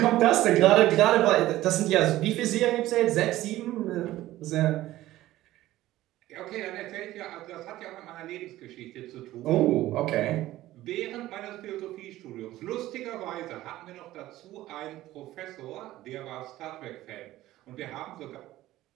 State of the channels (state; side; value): quieter; left; 15.6 dB